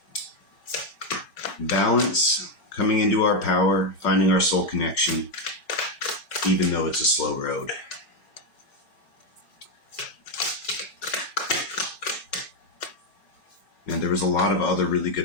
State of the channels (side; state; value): right; late; 5.4 ms